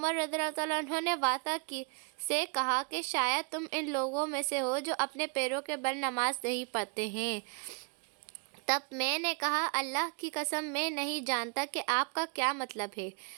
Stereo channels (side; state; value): left; quieter; 37.2 dB